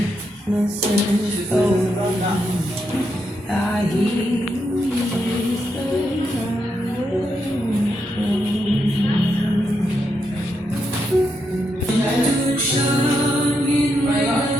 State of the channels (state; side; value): normal; both; correlation 0.82